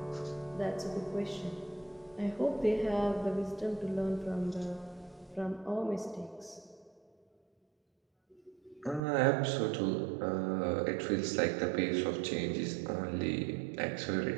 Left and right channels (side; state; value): left; drops out; at 9.0 s